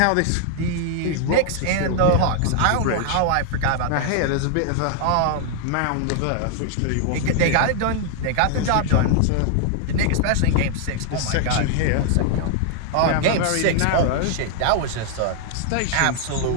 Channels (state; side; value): different; both; correlation 0.00